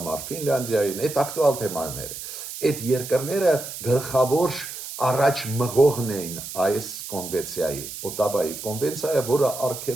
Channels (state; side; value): noise; right; hiss, 10 dB below the sound